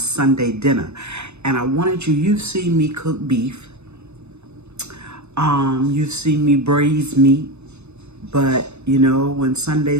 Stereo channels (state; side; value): late; left; 0.81 ms